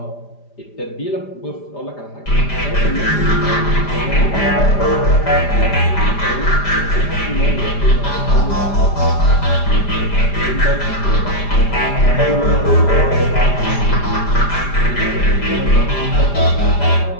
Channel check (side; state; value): right; late; 5.0 ms